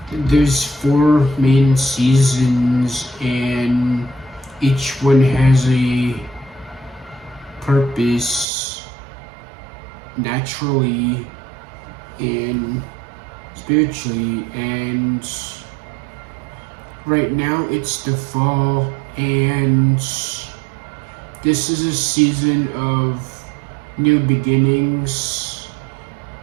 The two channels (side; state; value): left; drops out; at 8.5 s